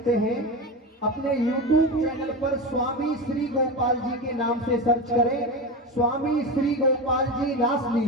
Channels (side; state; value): both; normal; correlation 0.21